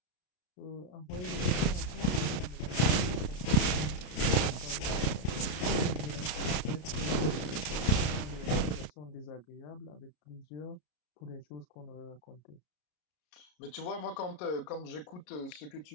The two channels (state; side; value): late; right; 33 ms